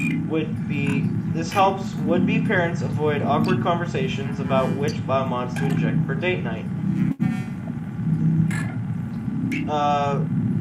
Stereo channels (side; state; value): both; identical; correlation 1.00